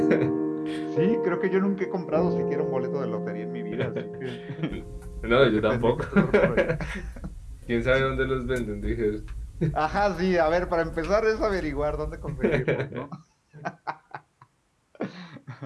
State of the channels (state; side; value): identical; both; correlation 1.00